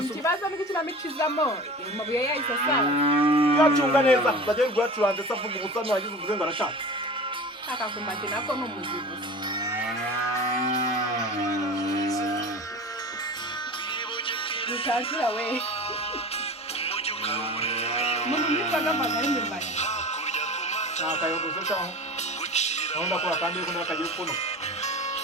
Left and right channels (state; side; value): normal; both; correlation 0.36